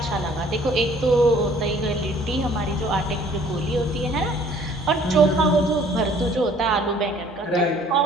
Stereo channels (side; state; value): both; normal; correlation 0.56